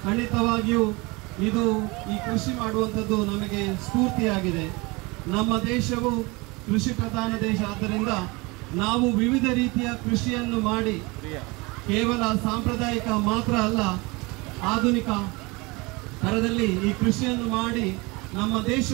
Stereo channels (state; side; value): quieter; left; 25.5 dB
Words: ಖಂಡಿತವಾಗಿಯೂ ಈ ಕೃಷಿ ಮಾಡುವಂಥದ್ದು ನಮಗೆ ಸ್ಫೂರ್ತಿಯಾಗಿದೆ. ನಮ್ಮ ದೇಶವು ಕೃಷಿ ಪ್ರಧಾನ ದೇಶ. ಆದ್ದರಿಂದ ನಾವು ವಿವಿಧ ರೀತಿಯ ಕೃಷಿಯನ್ನು ಮಾಡಿ ಕೇವಲ ಸಾಂಪ್ರದಾಯಿಕ ಮಾತ್ರ ಅಲ್ಲ, ಆಧುನಿಕ ಥರದಲ್ಲಿ ಈ ಕೃಷಿಯನ್ನು ಮಾಡಿ ನಮ್ಮ